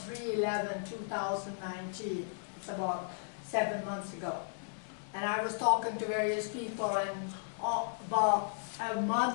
It's about 7 months ago. And I was talking to various people, and about a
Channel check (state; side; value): silent; right; digital silence